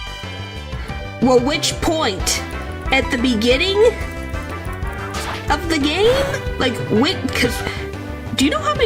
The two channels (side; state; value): both; identical; correlation 1.00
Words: Well, which point? At the beginning of the game? Like, because do you know how